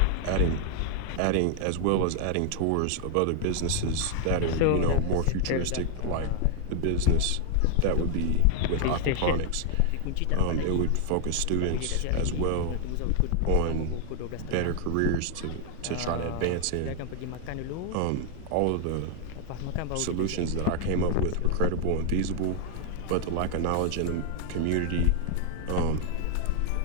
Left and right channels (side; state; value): both; different; correlation 0.00